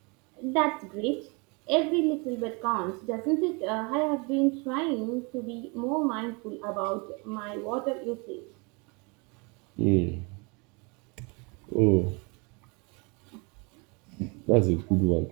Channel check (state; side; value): quieter; left; 30.5 dB